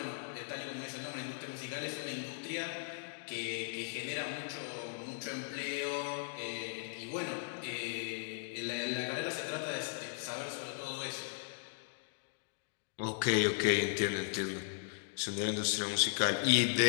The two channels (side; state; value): right; silent; digital silence